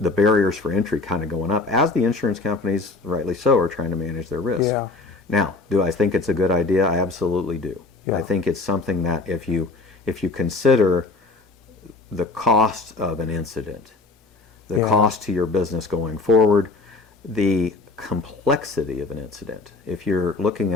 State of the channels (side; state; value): right; quieter; 3.7 dB